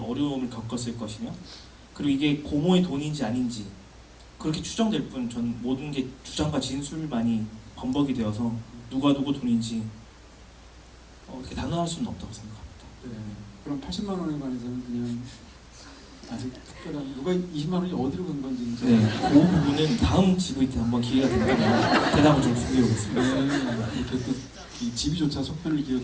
겪었을 것이며 그리고 이게 고모의 돈인지 아닌지 그렇게 추정될 뿐 전 모든 게 주장과 진술만이 범벅이 되어서 누가 누구 돈인지 이렇게 단언할 수는 없다고 생각합니다. 네. 그럼 80만 원에 관해서는 그냥 아직 특별한 누가 20만 원이 어디로 간 건지 이제 네, 그 부분은 다음 GV 때 한번 기회가 된다면 대답을 좀 준비해 오겠습니다. 네, 이렇게 또 이 집이조차 속편을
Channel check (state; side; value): identical; both; correlation 1.00